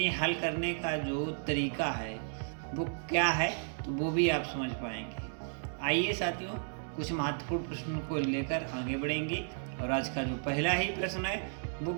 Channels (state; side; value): silent; left; digital silence